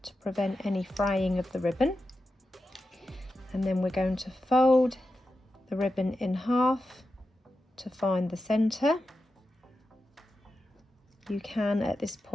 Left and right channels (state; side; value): normal; both; correlation 0.90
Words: to prevent any fraying of the ribbon. And then we're going to fold the ribbon in half to find the centre. You can at this